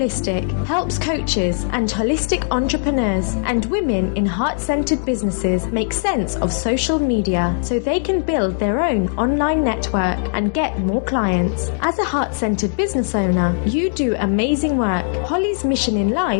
helps coaches and holistic entrepreneurs and women in heart-centered businesses make sense of social media so they can build their own online network and get more clients. As a heart-centered business owner, you do amazing work. Holly's mission in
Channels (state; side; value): silent; right; 64 dB below the other